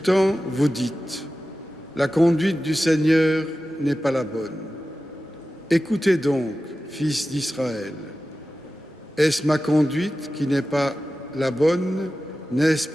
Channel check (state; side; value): normal; both; correlation 0.94